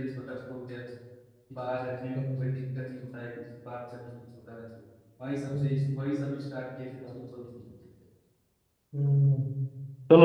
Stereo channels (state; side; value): identical; both; correlation 1.00